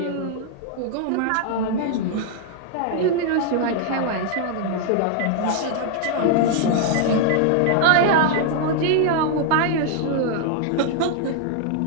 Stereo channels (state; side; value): different; both; correlation 0.00